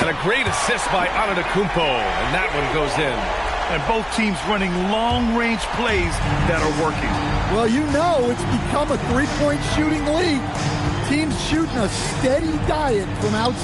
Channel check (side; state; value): both; identical; correlation 1.00